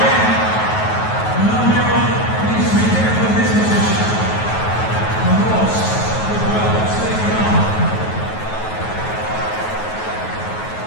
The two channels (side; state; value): right; late; 9.4 ms